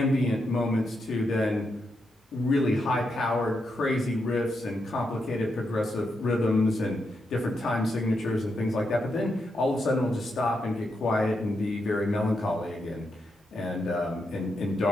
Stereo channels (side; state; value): both; normal; correlation 0.83